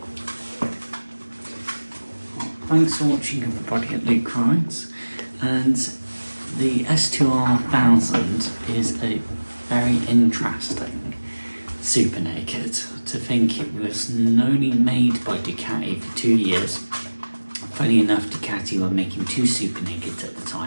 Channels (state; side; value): inverted; both; correlation -1.00